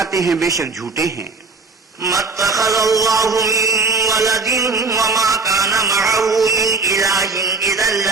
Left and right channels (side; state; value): left; quieter; 4.1 dB